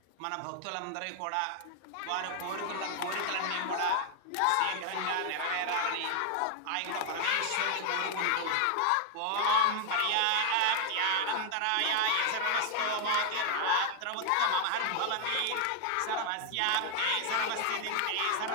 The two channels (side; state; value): both; different; correlation 0.00